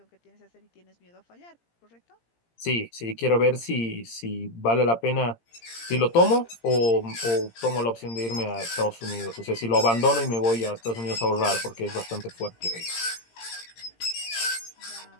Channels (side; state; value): right; late; 17 ms